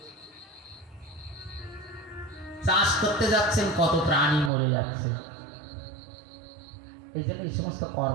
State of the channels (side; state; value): left; drops out; at 4.5 s